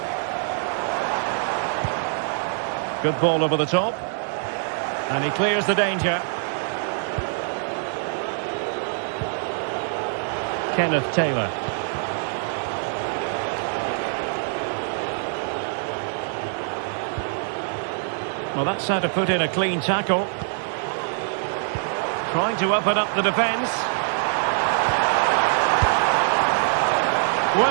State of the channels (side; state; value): left; silent; digital silence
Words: Good ball over the top. And he clears the danger. Kenneth Taylor. Well, that's how to put in a clean tackle. Trying to open up the defence.